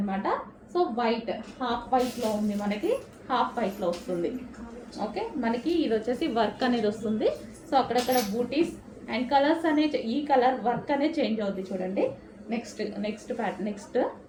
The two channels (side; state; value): both; identical; correlation 1.00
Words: సో వైట్, హాఫ్ వైట్లో ఉంది, మనకి హాఫ్ వైట్లో వస్తుంది. ఓకే, మనకి ఇది వచ్చేసి వర్క్ అనేది వస్తుంది. సో అక్కడక్కడ బూటీస్ అండ్ కలర్స్ అనేది, ఈ కలర్ వర్క్ అనేది చేంజ్ అవుతుంది చూడండి. నెక్స్ట్